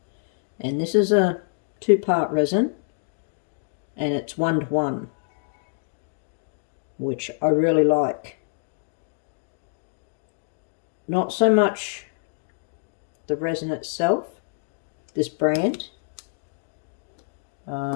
and this is a 2-part resin, and it's 1:1, which I really like. Not so much the resin itself, this brand.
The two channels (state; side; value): silent; right; digital silence